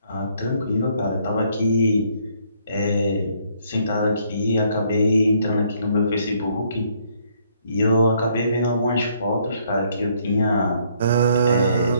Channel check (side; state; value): both; inverted; correlation -0.67